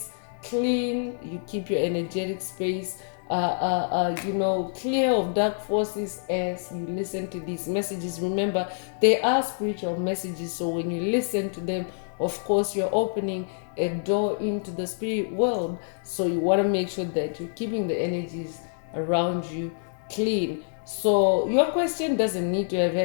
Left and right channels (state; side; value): silent; right; digital silence